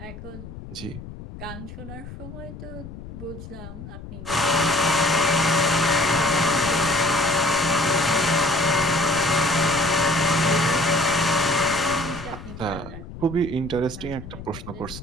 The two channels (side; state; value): left; noise; rumble, 13 dB below the sound